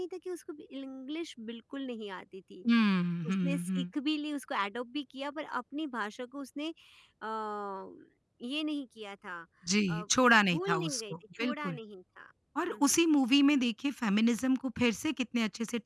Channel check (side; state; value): both; identical; correlation 1.00